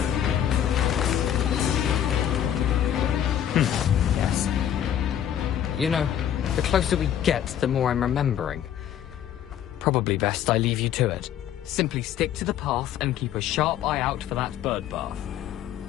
Yes. You know, the closer we get, the more I'm remembering. Probably best I leave you to it. Simply stick to the path and keep a sharp eye out for that bird bath.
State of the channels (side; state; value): right; quieter; 10.3 dB